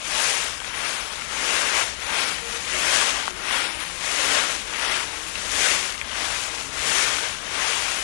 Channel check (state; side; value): silent; right; digital silence